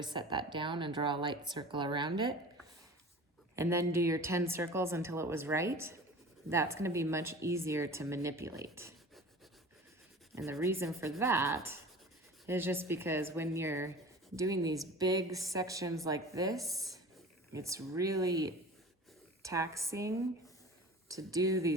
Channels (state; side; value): normal; both; correlation 0.39